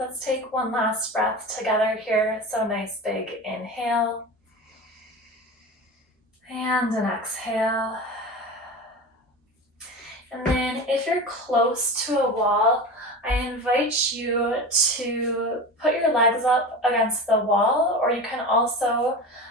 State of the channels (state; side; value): normal; both; correlation 0.29